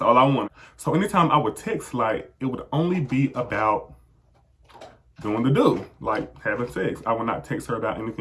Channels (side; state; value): both; identical; correlation 1.00